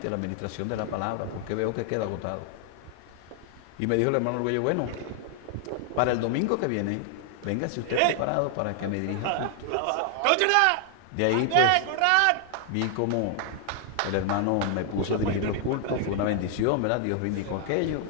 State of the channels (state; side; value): different; both; correlation 0.00